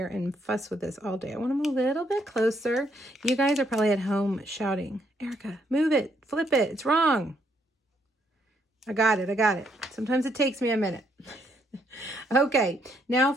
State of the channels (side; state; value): both; normal; correlation 0.73